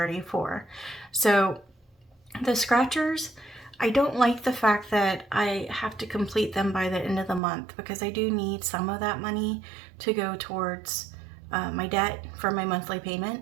So the scratchers, I don't like the fact that I have to complete them by the end of the month, because I do need some of that money to go towards my debt for my monthly payment.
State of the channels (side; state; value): left; drops out; at 7.4 s